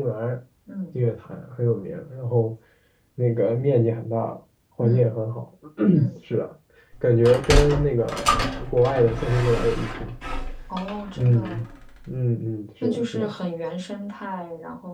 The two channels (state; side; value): identical; both; correlation 1.00